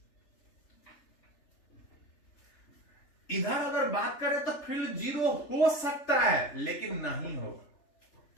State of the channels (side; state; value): right; late; 3.4 ms